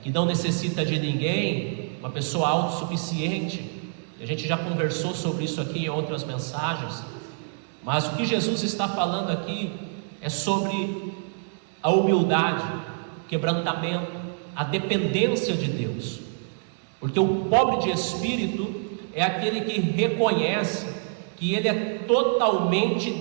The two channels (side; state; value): left; silent; digital silence